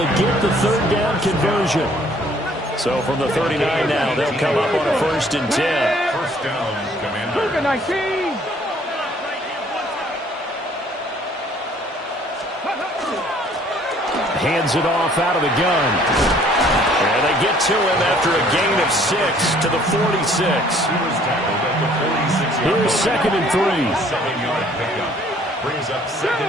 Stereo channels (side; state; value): both; normal; correlation 0.59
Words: get the 3rd down conversion. So from the 39 now, they'll come up on a 1st and 10. First down, Commander. 19. Hands it off out of the gun. And they get to him after a gain of 6 to the 46. Here's 2nd and 3. 7-yard pickup. Brings up